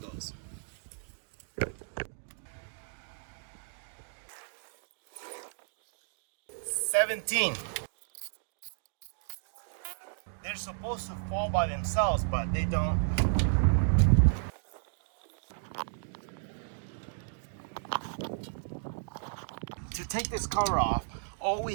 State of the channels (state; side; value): silent; left; digital silence